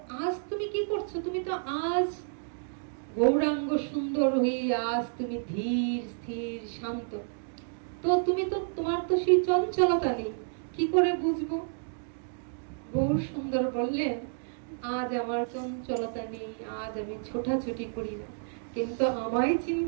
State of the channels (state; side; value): silent; left; digital silence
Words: আজ তুমি কি করছো তুমি তো আজ গৌরাঙ্গ সুন্দর হয়ে আজ তুমি ধীর স্থির শান্ত তো তুমি তো তোমার তো সেই চঞ্চলতা নেই কি করে বুঝবো গৌর সুন্দর বললেন আজ আমার চঞ্চলতা নেই আজ আমি ছোটাছুটি করি না কিন্তু আমায়